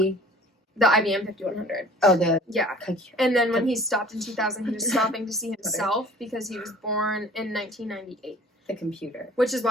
The IBM 5100. Oh, yeah. And then when he stopped in 2000, he was stopping to see himself because he was born in 1998. The computer. Which is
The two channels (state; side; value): normal; both; correlation 0.48